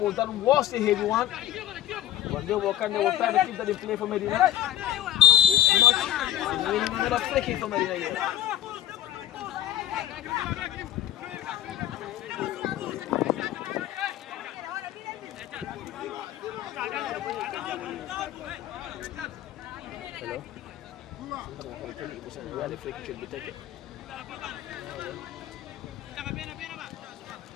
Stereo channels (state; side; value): quieter; right; 12.6 dB